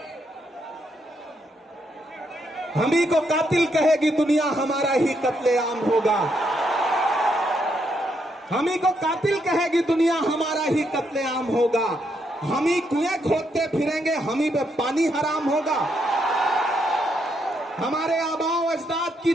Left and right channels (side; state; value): both; normal; correlation 0.77